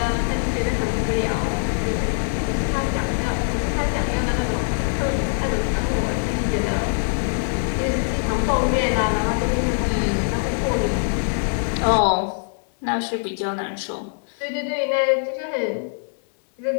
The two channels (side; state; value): right; silent; digital silence